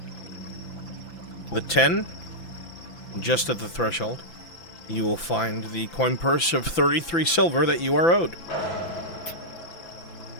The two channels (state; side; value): late; right; 5.9 ms